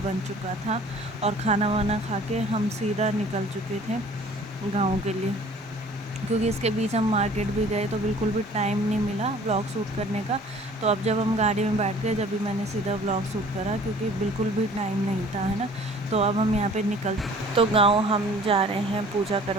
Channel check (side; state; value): both; normal; correlation 0.51